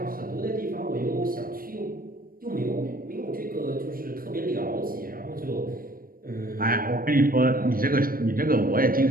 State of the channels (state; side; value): late; left; 0.41 ms